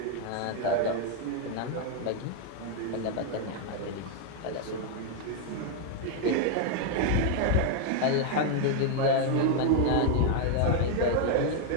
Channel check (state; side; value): different; both; correlation 0.00